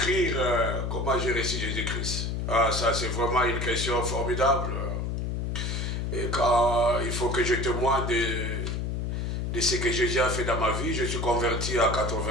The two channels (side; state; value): left; noise; hum, 1 dB below the sound